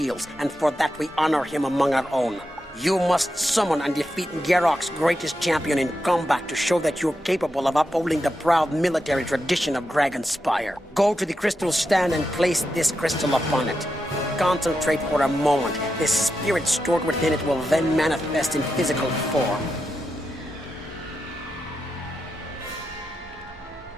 and for that we honor him among our own. You must summon and defeat Garrock's greatest champion in combat to show that you're capable of upholding the proud military tradition of Dragonspire. Go to the crystal stand and place this crystal upon it. Concentrate for a moment. The spirit stored within it will then manifest in physical form.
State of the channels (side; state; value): both; normal; correlation 0.87